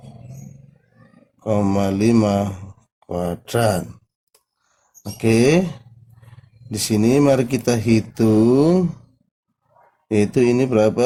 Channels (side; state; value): both; identical; correlation 1.00